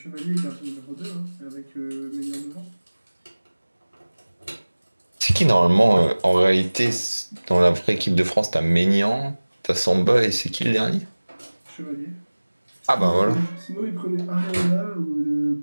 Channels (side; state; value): both; inverted; correlation -1.00